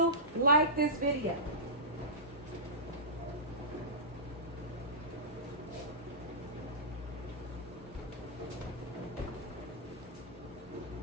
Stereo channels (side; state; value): both; normal; correlation -0.16